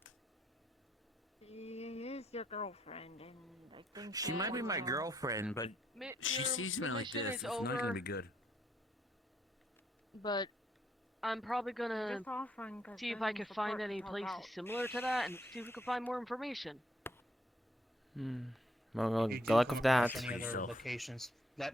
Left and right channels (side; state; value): both; normal; correlation 0.71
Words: She is your girlfriend, and I think She might be my girl. girlfriend, but she Your sees me like mission this. is It's not over, gonna be good. But I'm probably gonna Just offering 'cause see if I I need can support find to any help places out. similar to that and see if we can find more information. Well, If you good do luck come with that. across any other Yourself. locations,